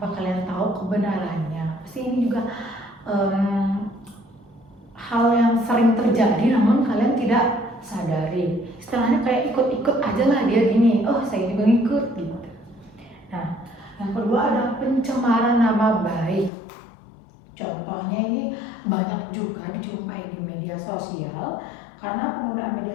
kalian tahu kebenarannya. Pasti ini juga hal yang sering terjadi namun kalian tidak sadari. Istilahnya kayak ikut-ikut aja lah dia gini, oh saya juga ngikut gitu. Nah, yang kedua ada pencemaran nama baik. Contohnya ini banyak juga dijumpai di media sosial, karena pengguna media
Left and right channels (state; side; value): drops out; right; at 16.5 s